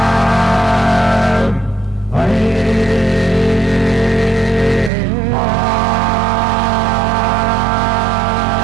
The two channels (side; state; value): left; drops out; at 4.9 s